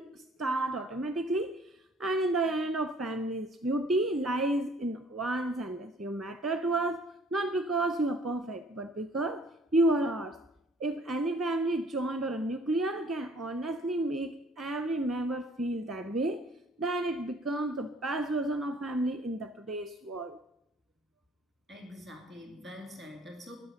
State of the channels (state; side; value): normal; both; correlation 0.57